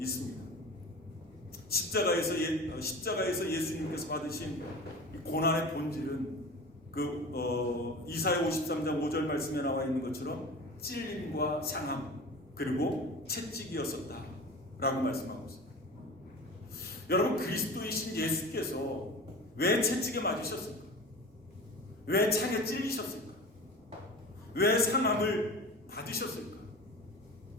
있습니다. 십자가에서 예수님께서 받으신 고난의 본질은 이사야 53장 5절 말씀에 나와 있는 것처럼 찔림과 상함 그리고 채찍이었었다 라고 말씀하고 있습니다. 여러분, 그리스도이신 예수께서 왜 채찍에 맞으셨을까? 왜 창에 찔리셨을까? 왜 상함을 받으셨을까?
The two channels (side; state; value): both; normal; correlation 0.34